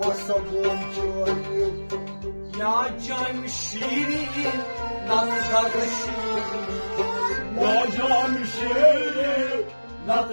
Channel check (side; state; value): both; inverted; correlation -1.00